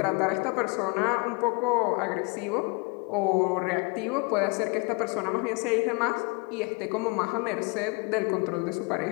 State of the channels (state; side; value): quieter; right; 31.0 dB